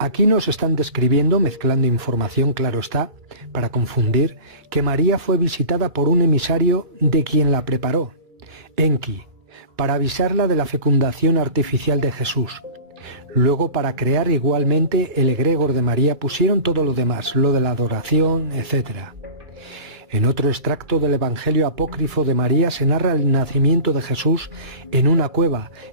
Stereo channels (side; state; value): left; late; 2.3 ms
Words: nos están describiendo, mezclando información, claro está, para confundir, que María fue visitada por un emisario de quien la preparó, Enki, para avisarla de la fecundación artificial de Jesús. Luego, para crear igualmente el egregor de María, pusieron todo lo demás, lo de la adoración, etc. En otro extracto del Evangelio apócrifo de María se narra el nacimiento de Jesús en una cueva